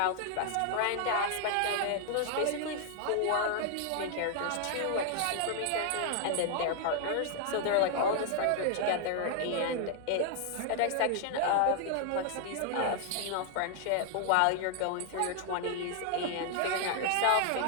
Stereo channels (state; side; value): different; both; correlation 0.00